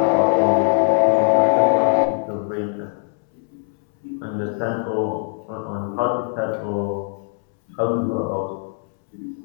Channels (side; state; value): right; silent; 65 dB below the other